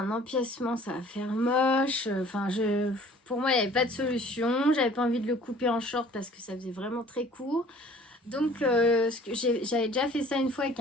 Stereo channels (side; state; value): both; normal; correlation 0.51